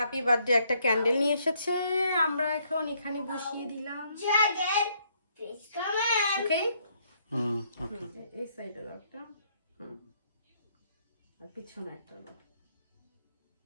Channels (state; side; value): inverted; both; correlation -0.70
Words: বার্থডে একটা ক্যান্ডেল নিয়ে এসেছে, আমরা এখন এখানে বসিয়ে দিলাম। ওকে, ওকে। এই সাইডের একটা, আর পিছনে একটা।